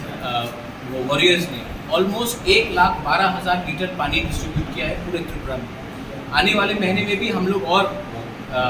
वो वॉरियर्स ने ऑलमोस्ट 1,12,000 लीटर पानी डिस्ट्रीब्यूट किया है पूरे त्रिपुरा में। आने वाले महीने में भी हम लोग और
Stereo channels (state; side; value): identical; both; correlation 1.00